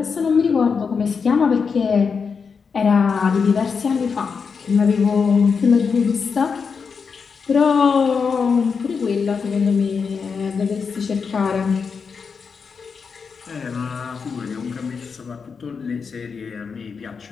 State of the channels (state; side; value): quieter; right; 5.6 dB